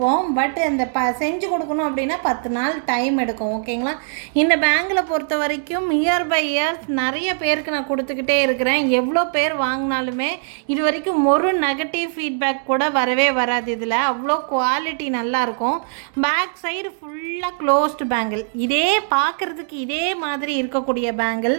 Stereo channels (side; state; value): left; silent; digital silence